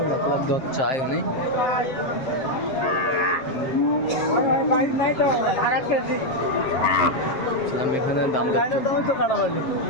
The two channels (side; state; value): right; late; 7.1 ms